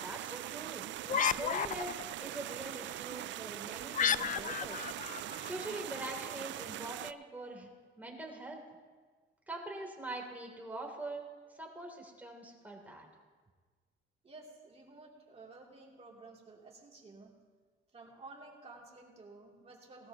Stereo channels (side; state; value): both; normal; correlation 0.02